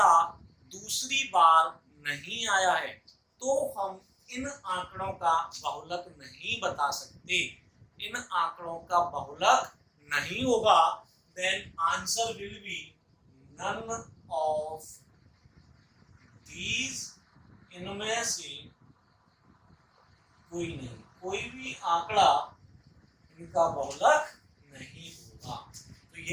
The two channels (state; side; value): identical; both; correlation 1.00